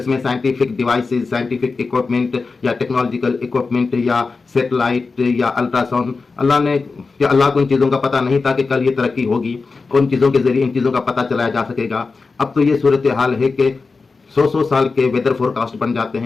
میں سائنٹیفک ڈیوائسز، سائنٹیفک اکوپمنٹ یا ٹیکنالوجیکل اکوپمنٹ یا سیٹلائٹ یا الٹرا ساؤنڈ، اللہ کو ان چیزوں کا پتہ نہیں تھا کہ کل یہ ترقی ہوگی، ان چیزوں کے ذریعے ان چیزوں کا پتہ چلایا جا سکے گا. اب تو یہ صورتحال ہے کہ 100 سال کے ویدر فور کاسٹ بن جاتے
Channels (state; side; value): quieter; right; 4.3 dB